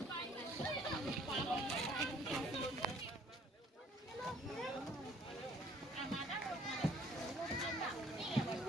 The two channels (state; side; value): normal; both; correlation 0.59